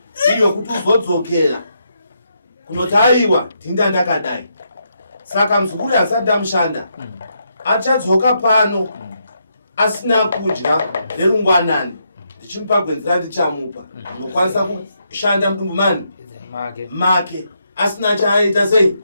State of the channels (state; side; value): inverted; both; correlation -0.79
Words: iyo kuti uzodzokera kunoti aiwa tinda ndakadai saka muzukuru asati ndamushanda achadzoka pano asina kudya nerungwanani ndichimupa gwenzi randichamupa unokwanisa kushanda mudumbu mani make asina chaaita sei